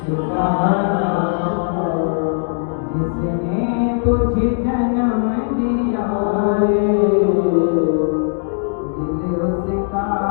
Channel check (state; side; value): silent; right; 67 dB below the other